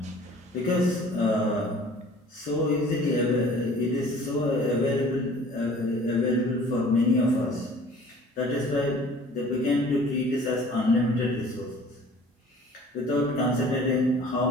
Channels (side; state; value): both; normal; correlation 0.49